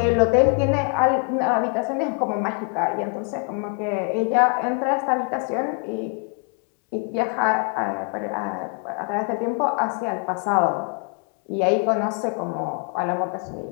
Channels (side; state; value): right; quieter; 38.0 dB